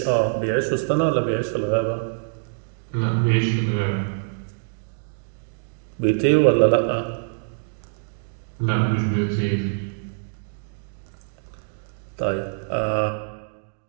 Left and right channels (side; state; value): left; silent; digital silence